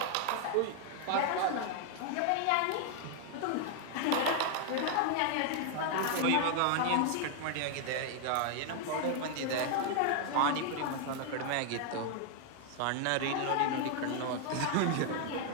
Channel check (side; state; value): both; different; correlation 0.00